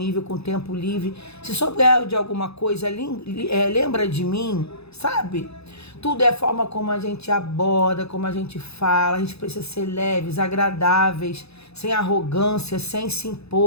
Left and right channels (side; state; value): right; late; 0.79 ms